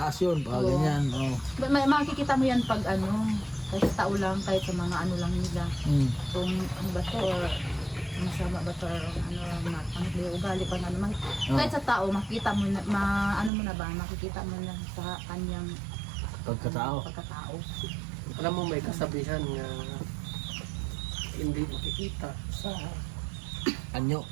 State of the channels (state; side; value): drops out; left; at 13.5 s